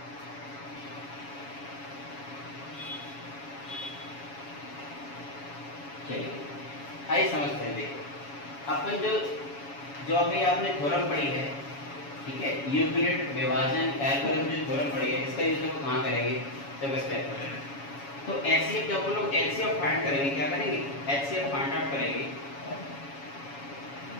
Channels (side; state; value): right; late; 7.2 ms